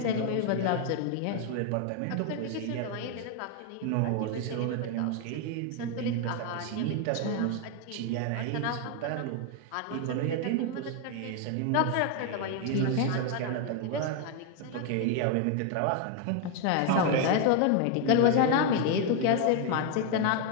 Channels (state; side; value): different; both; correlation 0.01